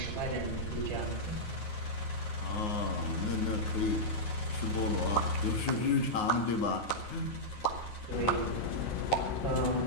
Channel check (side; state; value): right; late; 9.5 ms